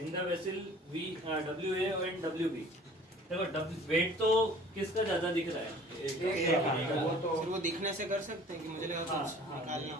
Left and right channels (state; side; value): normal; both; correlation 0.49